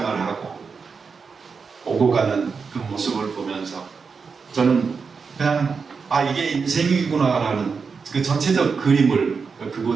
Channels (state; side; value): quieter; left; 5.3 dB